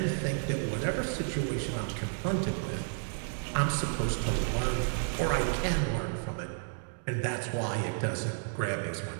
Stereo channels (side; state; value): left; silent; digital silence